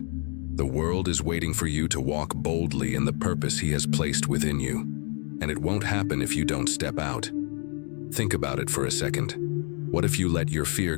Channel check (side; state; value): right; quieter; 38.8 dB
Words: The world is waiting for you to walk boldly in the purpose He has placed within you. And it won't happen if you don't step out. Think about it for a second. What if you let your fear